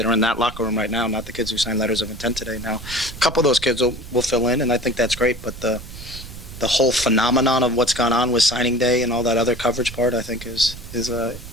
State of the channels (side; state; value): right; noise; rumble, 14 dB below the sound